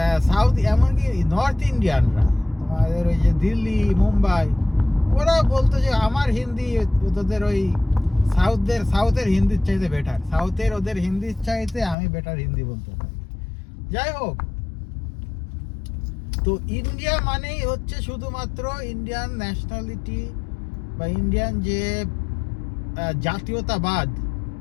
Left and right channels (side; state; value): right; drops out; at 12.0 s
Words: সাউথ, এমনকি নর্থ ইন্ডিয়ানরা, তোমাদের ওই যে দিল্লি, মুম্বাই, ওরা বলতো যে আমার হিন্দি তোদের ওই সাউথের হিন্দির চাইতে বেটার, সাউথের ওদের হিন্দির চাইতে আমি বেটার হিন্দি বলতে পারি। যাই হোক, তো ইন্ডিয়া মানেই হচ্ছে শুধুমাত্র ইন্ডিয়ান ন্যাশনালিটি বা ইন্ডিয়ান যে জাতীয়তাবাদ,